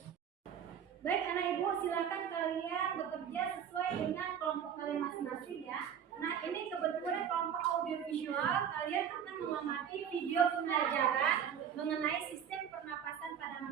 Baik anak ibu, silakan kalian bekerja sesuai dengan kelompok kalian masing-masing ya. Nah ini kebetulan kelompok audiovisual, kalian akan mengamati video pembelajaran mengenai sistem pernapasan pada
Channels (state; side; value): quieter; left; 8.5 dB